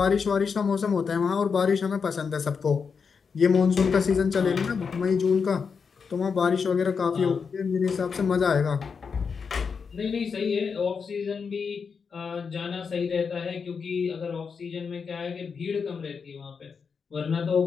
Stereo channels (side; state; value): right; quieter; 5.8 dB